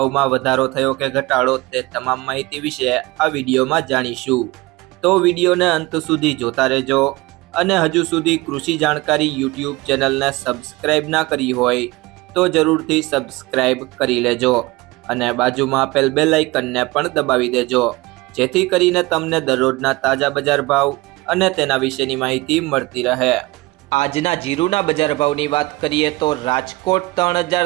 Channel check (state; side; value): quieter; left; 21.7 dB